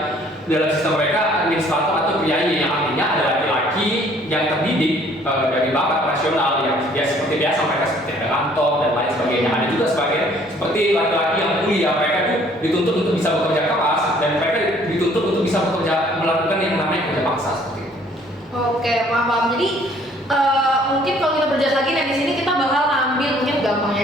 dalam sistem mereka administrator atau priayi, yang artinya ada laki-laki yang terdidik dari bakat rasional yang dia seperti biasa, mereka seperti ada kantor dan lain sebagainya. Ada juga seperti laki-laki yang kuliah, mereka itu dituntut untuk bisa bekerja keras, dan mereka dituntut untuk bisa melakukan yang namanya kerja paksa seperti itu. Oke, paham. Jadi mungkin kalau kita berjalan lagi, nah di sini kita bakal ngambil, mungkin gampangnya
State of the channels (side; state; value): both; normal; correlation 0.59